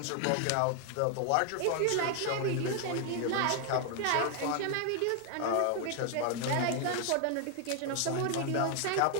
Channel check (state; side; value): different; both; correlation 0.00